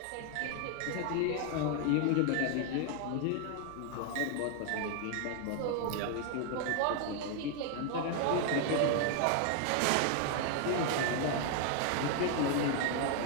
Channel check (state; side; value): different; both; correlation 0.00